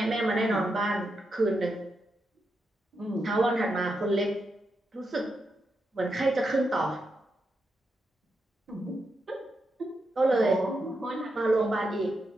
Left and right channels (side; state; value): both; normal; correlation 0.85